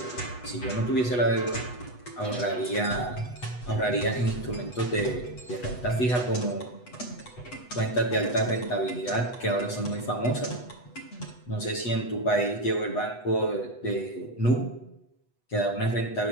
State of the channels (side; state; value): right; late; 8.1 ms